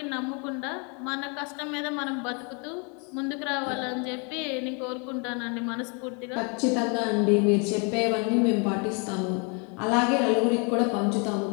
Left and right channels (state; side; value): quieter; right; 35.0 dB